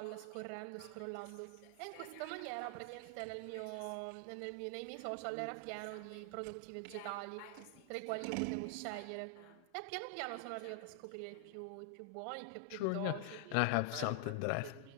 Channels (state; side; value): different; both; correlation 0.00